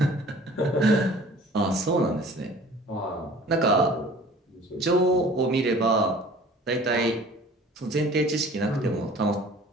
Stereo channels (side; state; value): both; normal; correlation 0.48